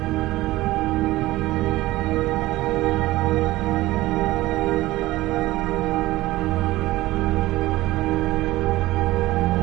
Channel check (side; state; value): left; quieter; 17.7 dB